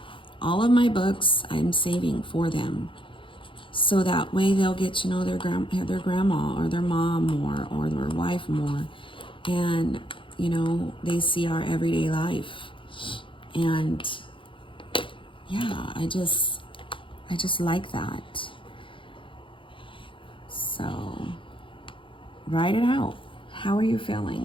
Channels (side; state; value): right; late; 0.25 ms